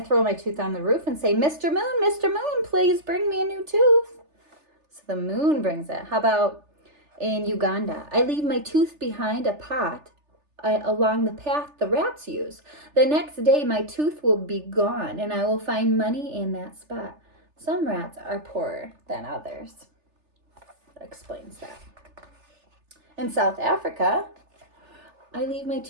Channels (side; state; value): left; late; 3.4 ms